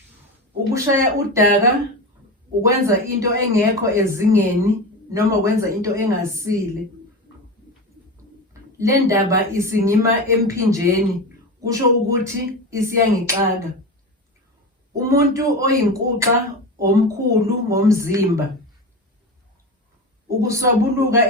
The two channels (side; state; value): both; normal; correlation 0.24